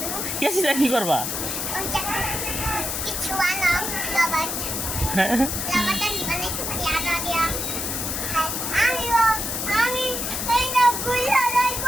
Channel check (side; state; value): left; noise; hiss, 2 dB below the sound